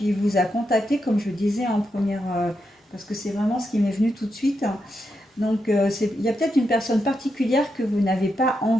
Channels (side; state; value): both; normal; correlation 0.84